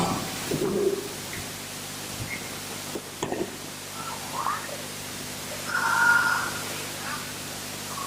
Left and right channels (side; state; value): both; identical; correlation 1.00